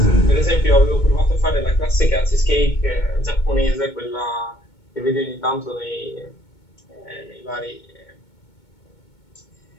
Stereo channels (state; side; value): late; right; 2.2 ms